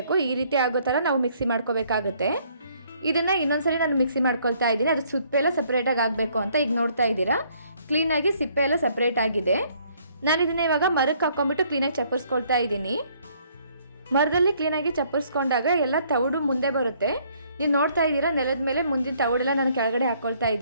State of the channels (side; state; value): both; inverted; correlation -0.64